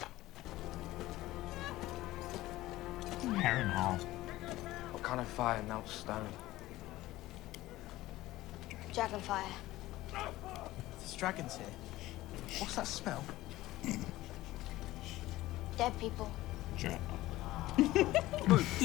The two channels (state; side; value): quieter; right; 16.9 dB